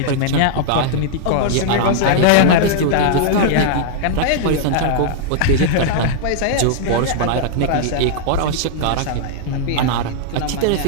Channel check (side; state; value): both; different; correlation -0.01